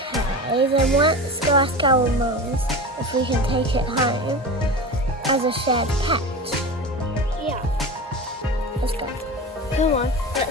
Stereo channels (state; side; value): normal; both; correlation 0.29